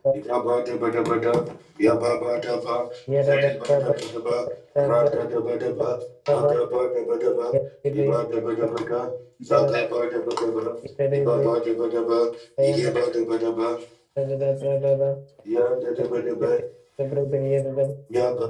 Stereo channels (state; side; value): identical; both; correlation 1.00